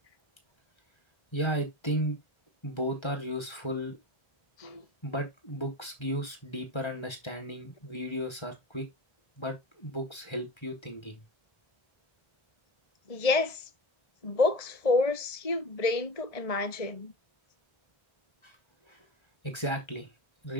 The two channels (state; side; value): late; right; 1.3 ms